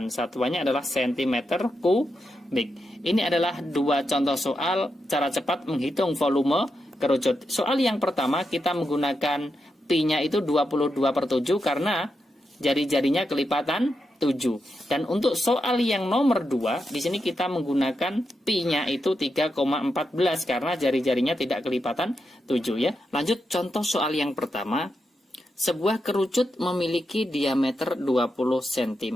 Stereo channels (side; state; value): both; normal; correlation 0.86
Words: Satuannya adalah cm kubik. Ini adalah dua contoh soal cara cepat menghitung volume kerucut. Soal yang pertama kita menggunakan pi-nya itu 22/7 karena jari-jarinya kelipatan 7. Dan untuk soal yang nomor 2, di sini kita menggunakan pi-nya itu 3,14 karena jari-jarinya tidak kelipatan 7 ya. Lanjut contoh soal yang pertama. Sebuah kerucut memiliki diameter 20